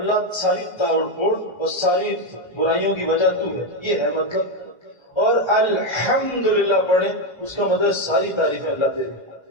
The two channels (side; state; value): right; late; 1.3 ms